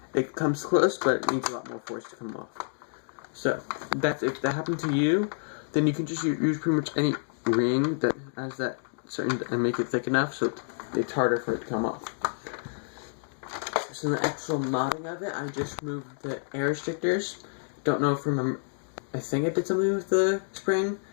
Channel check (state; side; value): silent; right; digital silence